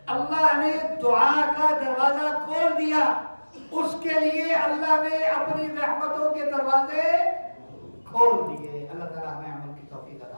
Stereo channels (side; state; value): both; inverted; correlation -1.00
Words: اللہ نے دعا کا دروازہ کھول دیا، اس کے لیے اللہ نے اپنی رحمتوں کے دروازے کھول دیے. اللہ تعالیٰ ہمیں